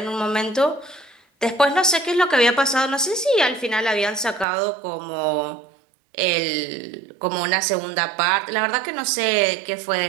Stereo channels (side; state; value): left; drops out; at 4.5 s